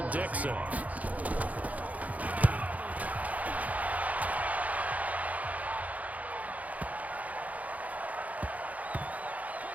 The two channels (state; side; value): late; left; 0.073 ms